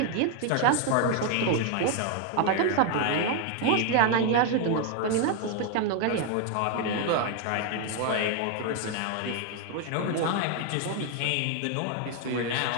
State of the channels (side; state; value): both; different; correlation 0.01